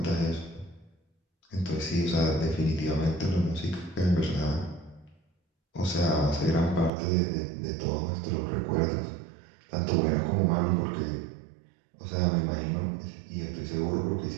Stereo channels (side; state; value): left; drops out; at 6.9 s